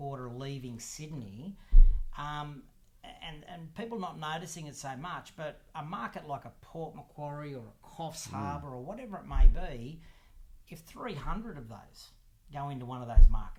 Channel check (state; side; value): identical; both; correlation 1.00